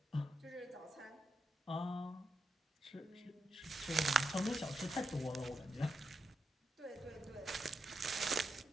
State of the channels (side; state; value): both; normal; correlation 0.83